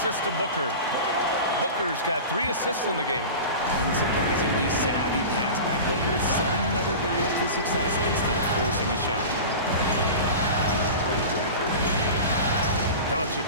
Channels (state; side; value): inverted; both; correlation -0.32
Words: to Booker. Booker's got 3 assists in the game. Unsurprisingly savvy pass by Booker, setting another guy up for success instead of forcing a shot. Doncic